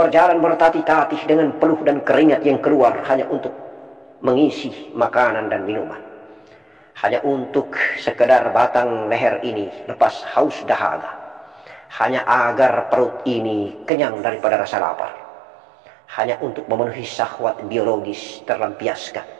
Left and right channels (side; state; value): left; drops out; at 13.9 s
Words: bertatih-tatih dengan peluh dan keringat yang keluar hanya untuk mengisi makanan dan minuman. Hanya untuk sekedar batang leher ini lepas haus dahaga. Hanya agar perut ini kenyang daripada rasa lapar. Hanya untuk memenuhi syahwat biologis terlampiaskan.